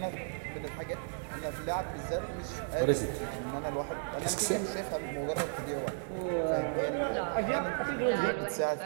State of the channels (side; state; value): left; silent; digital silence